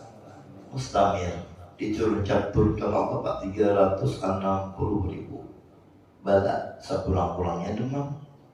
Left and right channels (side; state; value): both; identical; correlation 1.00